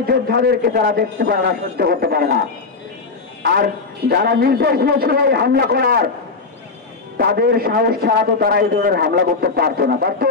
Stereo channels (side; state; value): right; quieter; 4.2 dB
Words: যোদ্ধাদেরকে তারা দেখতে পারে না, সহ্য করতে পারে না। আর যারা নির্দেশ দিয়েছিল এই হামলা করার, তাদের সাহস ছাড়া তো তারা এই ধরনের হামলা করতে পারতো না, পারতো?